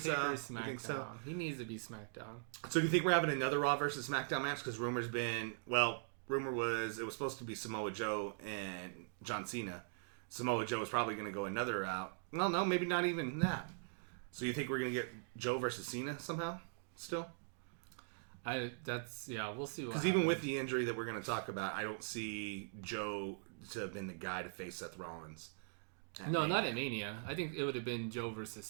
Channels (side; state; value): left; silent; digital silence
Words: You think so? He needs to be SmackDown. So do you think we're having another Raw versus SmackDown match? Because rumor was it was supposed to be Samoa Joe and John Cena. Samoa Joe was probably going to go another route. Well, no, maybe not even that. So you think we're going to get Joe versus Cena somehow still? We'll see. Because even with the injury that we're going to talk about, I don't see Joe to have been the guy to face Seth Rollins. No, not at Mania. I think it would have been Joe versus